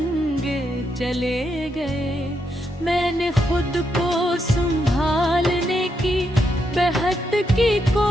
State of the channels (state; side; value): normal; both; correlation 0.80